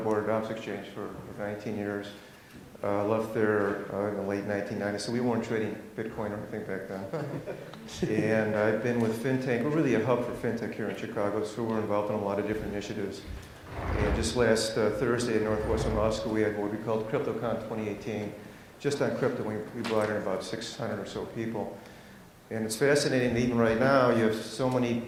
of Options Exchange for 19 years. Left there in the late 1990s, so we weren't trading Bitcoin or anything back then. And I've been with FinTech. We're really a hub for FinTech here in Chicago, so we're involved in a lot of different initiatives. And just last Thursday at Northwestern Law School, we had what we called CryptoCon 2018. Just on crypto, we brought in about 600 or so people. And it's fascinating that even right now, you have so many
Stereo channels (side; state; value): both; identical; correlation 1.00